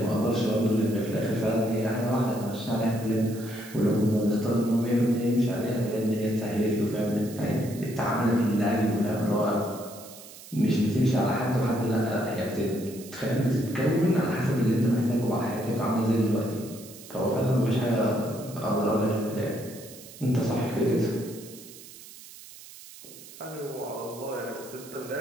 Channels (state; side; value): noise; right; hiss, 17 dB below the sound